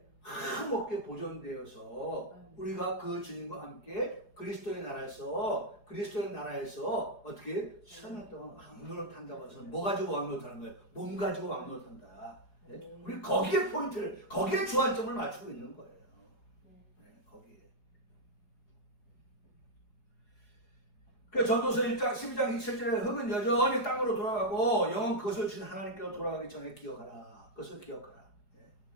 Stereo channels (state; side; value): late; right; 4.8 ms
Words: 흠없게 보존되어서 우리가 그 주님과 함께 그리스도의 나라에서 어떻게 1000년 동안 왕노릇 한다고 해서 뭐 가지고 왕노릇 하는 거예요? 몸 가지고 왕노릇 한다. 우리 거기에 포인트를, 거기에 주안점을 맞추고 있는 거예요. 거기에. 그 전도서 1장 12장 27절에 흙은 여전히 땅으로 돌아가고 영은 그것을 주신 하나님께로 돌아가기 전에 기억하라. 그것을 기억하라.